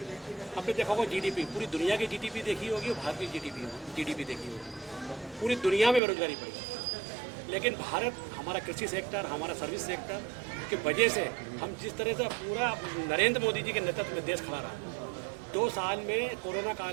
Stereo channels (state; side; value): drops out; left; at 6.0 s